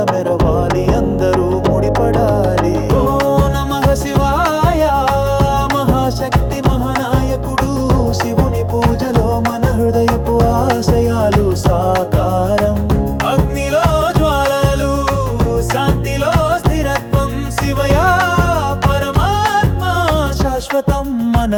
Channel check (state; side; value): identical; both; correlation 1.00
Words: మెరవాలి అందరూ ముడిపడాలి. ఓ నమః శివాయ మహాశక్తి మహానాయకుడు శివుని పూజలో మన హృదయపు ఆశయాలు సాకారం. అగ్నిలో జ్వాలలు శాంతిలో స్థిరత్వం శివయా పరమాత్మ శాశ్వతం మన